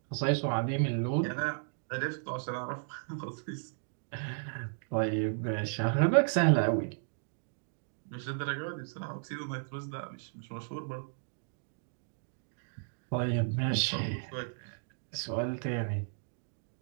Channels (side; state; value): left; silent; digital silence